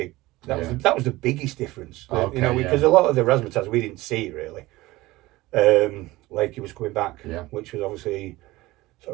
That was the biggest difference. Because a lot of the razzmatazz we didn't see really. Lakey was coming back, which was obviously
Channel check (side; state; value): left; quieter; 19.1 dB